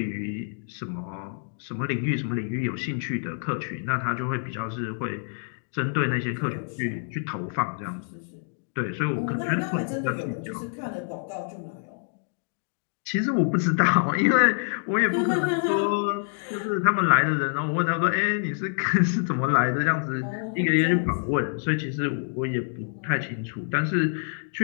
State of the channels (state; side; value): silent; right; 60 dB below the other